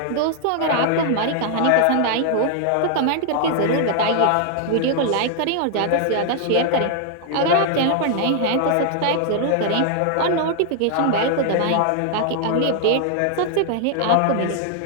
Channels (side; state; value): both; different; correlation 0.00